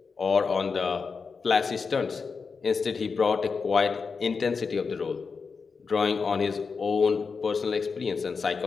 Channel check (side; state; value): right; quieter; 5.1 dB